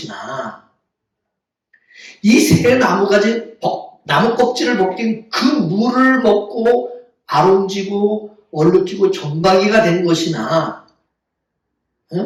이 새 나무가지 나무 껍질을 벗긴 그 물을 먹고 아름지고 얼룩지고 점박이가 된 것이나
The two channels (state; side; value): identical; both; correlation 1.00